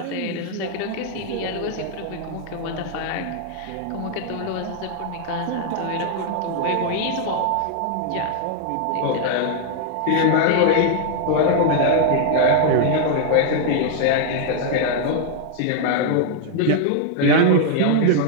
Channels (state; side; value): different; both; correlation -0.01